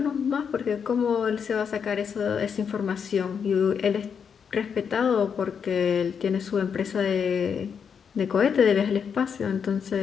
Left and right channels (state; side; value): quieter; right; 6.9 dB